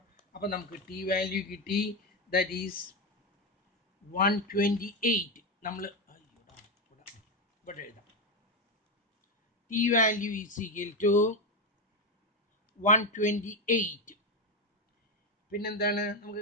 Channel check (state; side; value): normal; both; correlation 0.10